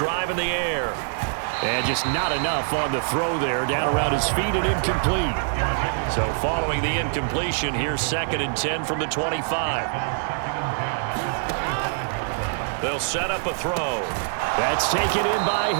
in the air. And just not enough on the throw there. Down around his feet and incomplete. So following the incompletion, here's 2nd and 10 from the 25. They'll set up a throw. That's taken in by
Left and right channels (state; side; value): silent; left; 62 dB below the other